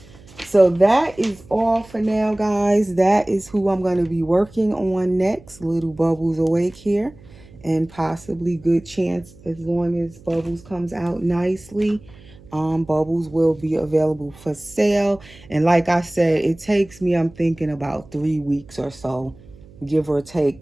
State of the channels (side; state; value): right; noise; hum, 23 dB below the sound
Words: So that is all for now, guys. That is who I'm going to be working on next. Little Bubbles Awake here. And possibly good chance, as long as Bubbles comes out nicely, Bubbles will be available for sale. And like I said, it takes me, I'm thinking about 3 weeks or so, give or take,